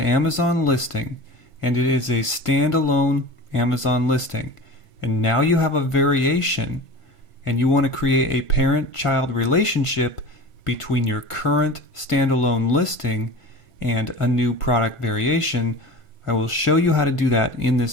listing and it is a standalone Amazon listing, and now you have a variation and you want to create a parent-child relationship between your current standalone listing and a new product variation, I will show you how to do that in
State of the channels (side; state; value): right; late; 1.5 ms